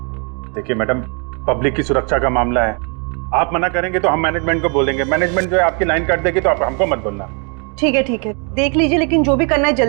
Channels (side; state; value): left; quieter; 37.3 dB